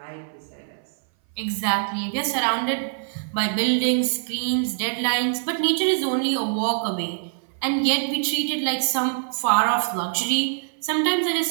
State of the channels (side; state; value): left; silent; 58 dB below the other